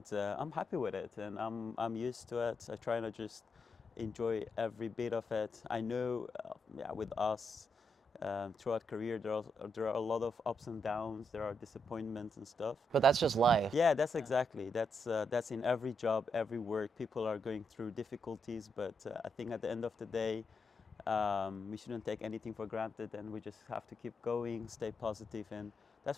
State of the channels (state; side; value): normal; both; correlation 0.81